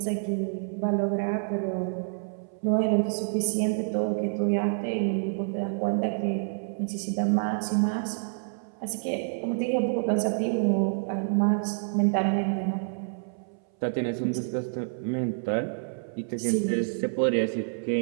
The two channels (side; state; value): left; silent; 59 dB below the other